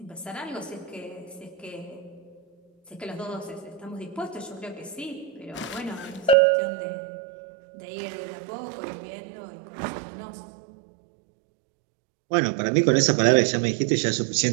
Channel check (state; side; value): drops out; left; at 6.4 s